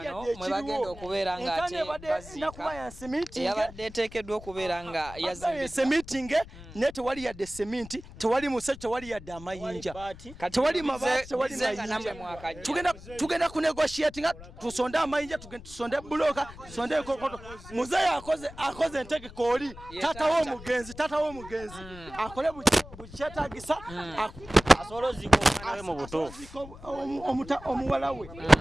mwe bagenda okubeera nga ate bazika yabadde eteekeddwa okubeera nga yazise meeting ne tewali yadde sementi tewali musajja tewali yadde amayinja tewali mabaati tewali mayinja tugenda ku negotiate nga tusonde amayinja tusonde buloka tusonde enkokoto muzeeyi akoze entegeko oli tata w'omugenzi akole bukyetagisa asolo ziko omwana we mu butuufu omuwala we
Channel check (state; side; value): noise; left; rumble, 17 dB below the sound